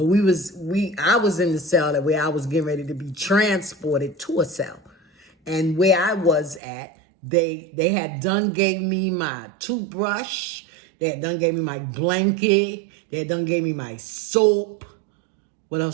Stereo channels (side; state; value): left; drops out; at 6.6 s